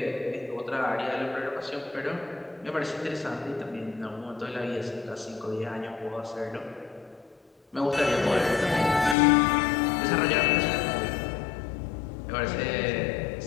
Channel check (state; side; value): drops out; right; at 9.2 s